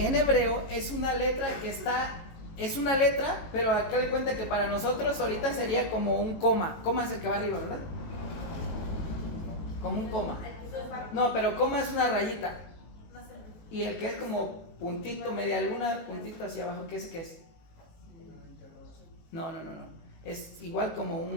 en hebreo es una letra es una letra, pero acá le cuenta que para nosotros ahorita sería como un coma. Coma es el que va arriba, ¿verdad? Como un coma. No, pero coma es una rayita. Y el que es como puntito, media luna, puntito hacia abajo, ¿qué es? No. Es igual como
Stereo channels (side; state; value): right; late; 18 ms